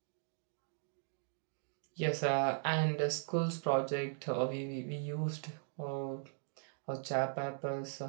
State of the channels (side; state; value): left; silent; digital silence